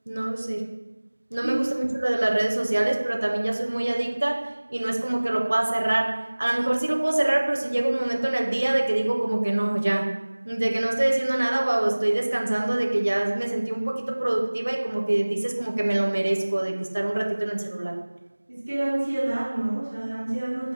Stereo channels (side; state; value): both; inverted; correlation -1.00